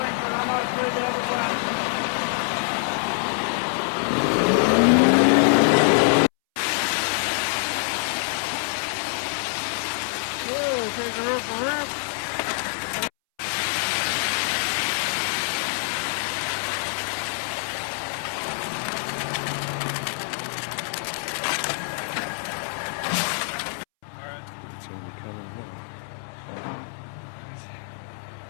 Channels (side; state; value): right; silent; 62 dB below the other